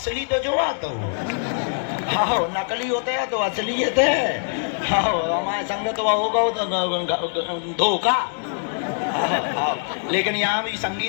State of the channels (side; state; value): right; silent; digital silence